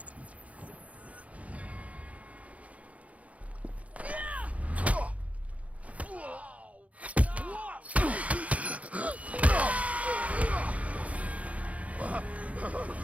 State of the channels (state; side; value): late; left; 0.067 ms